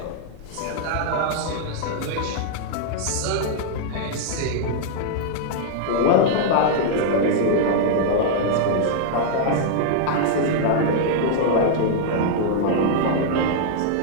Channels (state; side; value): different; both; correlation -0.01